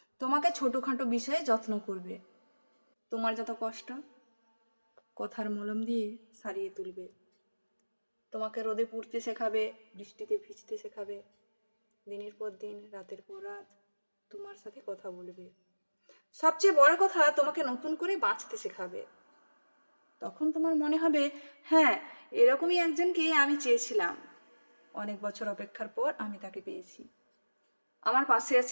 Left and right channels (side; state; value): both; inverted; correlation -1.00